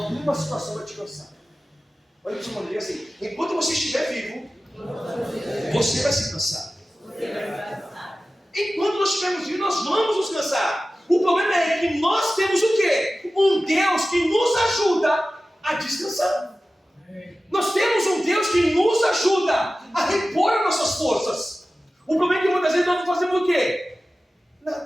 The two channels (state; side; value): normal; both; correlation 0.95